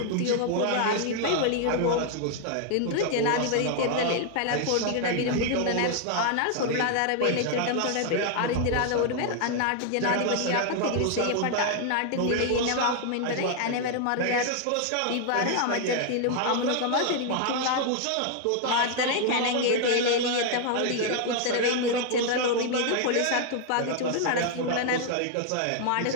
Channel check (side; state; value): both; different; correlation 0.00